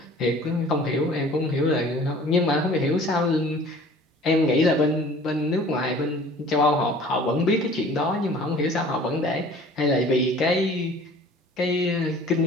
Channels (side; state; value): both; normal; correlation 0.48